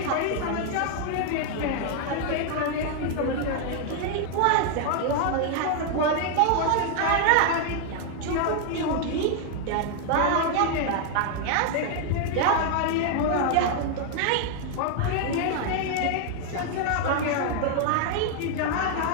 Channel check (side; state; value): both; different; correlation 0.00